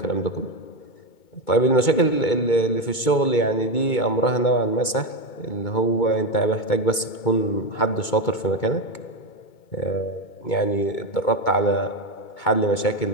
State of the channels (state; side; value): late; right; 2.2 ms